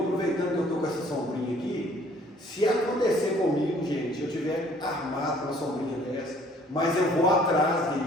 que eu estou com essa sombrinha aqui, se acontecer comigo, gente, eu tiver armado uma sombrinha dessa, mas eu vou atrás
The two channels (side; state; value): both; normal; correlation 0.58